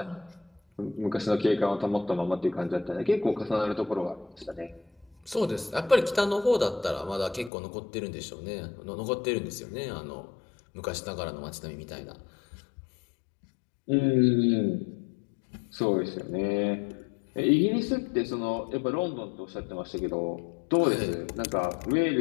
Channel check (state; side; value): drops out; right; at 7.5 s